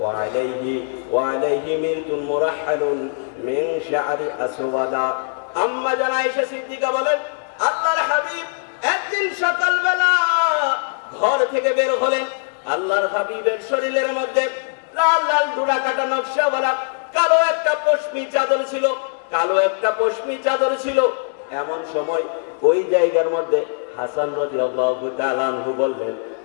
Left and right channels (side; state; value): right; silent; digital silence